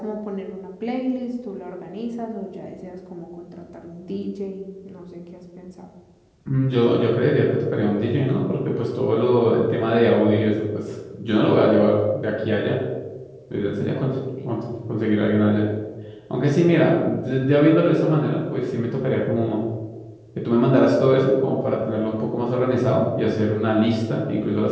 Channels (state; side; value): identical; both; correlation 1.00